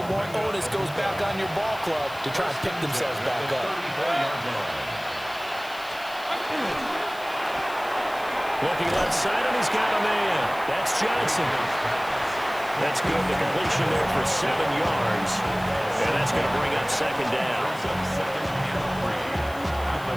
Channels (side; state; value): left; noise; hiss, 20 dB below the sound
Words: more onus goes back on your ball club to try and pick themselves back up. Looking left side, and he's got a man. That's Johnson. That's good. The completion there for 7 yards. And that's going to bring up 2nd down.